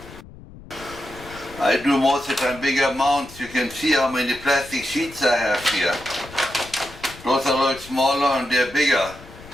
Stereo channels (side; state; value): left; noise; rumble, 18 dB below the sound